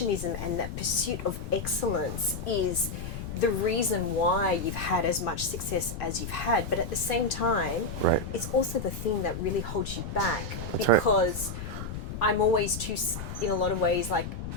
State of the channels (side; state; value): left; noise; rumble, 7 dB below the sound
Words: and that pursuit of excellence is the reason why you've had as much success as you've had. But at the same time, it's also the thing that really holds you back. Because I'm always in a lot of ways, like,